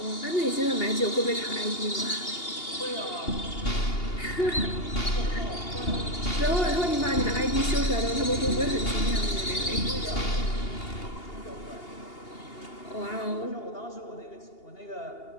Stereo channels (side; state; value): right; late; 2.8 ms